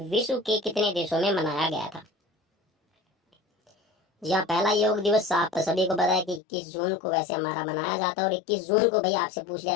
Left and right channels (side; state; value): right; drops out; at 6.4 s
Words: के कितने देशों में मनाया गया था? जी हाँ, पहला योग दिवस आप सभी को पता है कि 21 जून को वैसे हमारा मनाया जाता है। और 21 जून को भाई आपसे पूछ लिया